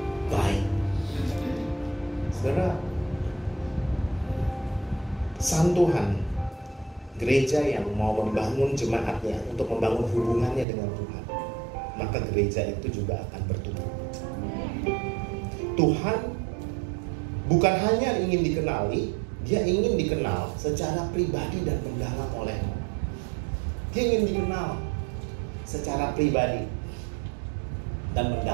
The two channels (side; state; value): left; drops out; at 10.7 s